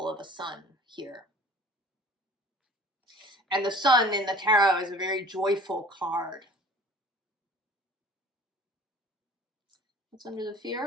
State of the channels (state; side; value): normal; both; correlation 0.47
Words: of a sun here. And the Sun in the tarot is a very joyful card. What's under the